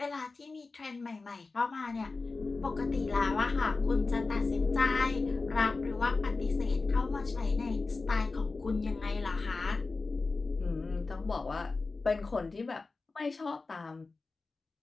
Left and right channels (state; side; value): quieter; right; 3.8 dB